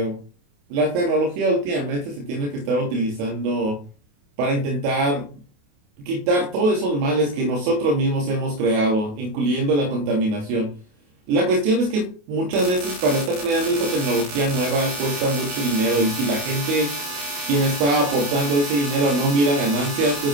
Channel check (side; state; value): left; late; 28 ms